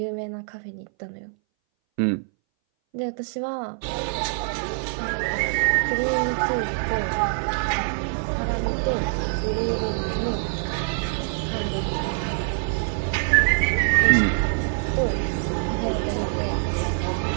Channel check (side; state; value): left; silent; 60 dB below the other